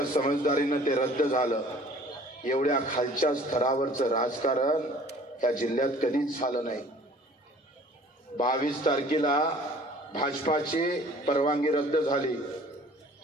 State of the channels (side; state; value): both; normal; correlation 0.50